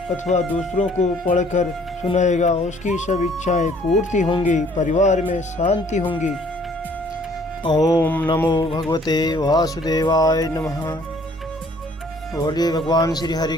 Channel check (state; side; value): normal; both; correlation 0.59